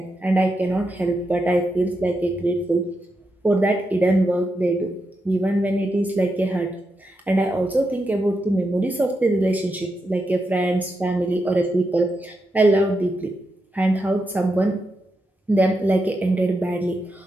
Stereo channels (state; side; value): normal; both; correlation 0.85